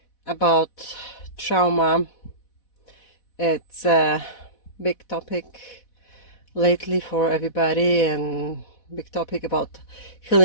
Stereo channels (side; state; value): right; late; 4.1 ms